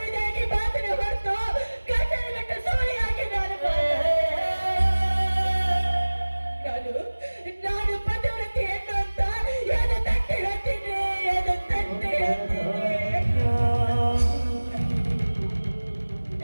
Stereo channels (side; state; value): both; inverted; correlation -1.00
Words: ಮಾತನ್ನ ಹೊರತು ಗಂಡನ ಬಿಟ್ಟು ಸೋಲಿಯಾಗಿ ನಾನು ಪದವೃತ್ತಿ ಹೆಣ್ಣು ಅಂತ ಏನು ತಟ್ಟೆ ಹೇಳ್ತೀನಿ, ಏನು ತಟ್ಟೆ